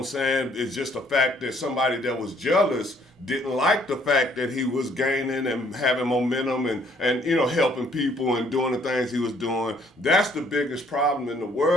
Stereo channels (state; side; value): normal; both; correlation 0.64